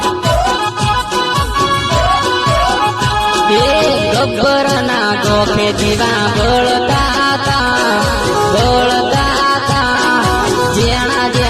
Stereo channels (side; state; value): both; identical; correlation 1.00